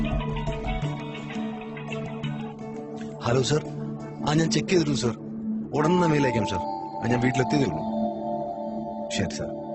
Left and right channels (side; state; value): both; identical; correlation 1.00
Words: Hello sir. ഞാൻ ചെക്ക് ചെയ്തിരുന്നു സർ. ഉടനെ മെയിൽ അയക്കാം സർ. ഞാൻ വീട്ടിലെത്തിയതേ ഉള്ളൂ. ശരി സർ.